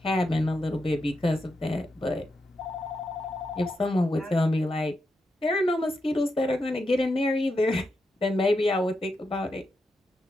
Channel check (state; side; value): normal; both; correlation 0.85